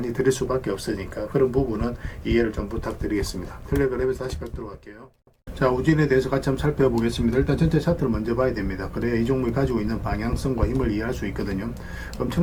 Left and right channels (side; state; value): both; identical; correlation 1.00